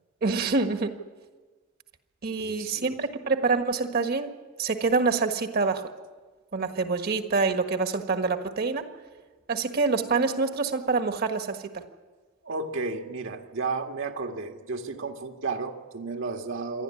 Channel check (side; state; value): left; quieter; 3.8 dB